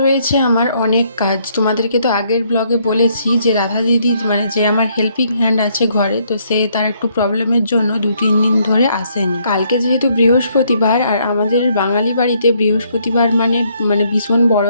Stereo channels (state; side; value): inverted; both; correlation -0.70